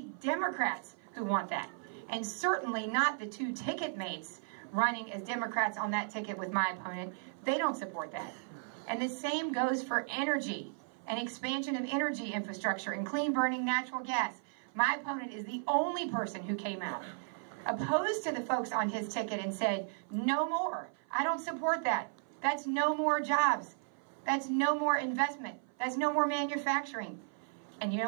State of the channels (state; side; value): silent; left; 54 dB below the other